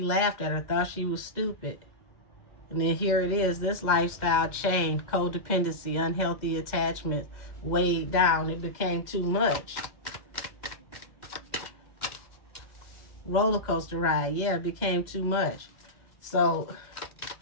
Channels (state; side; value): late; right; 2.1 ms